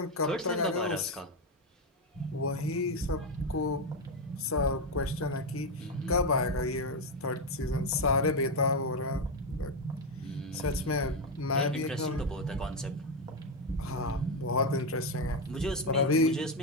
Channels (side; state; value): both; normal; correlation 0.07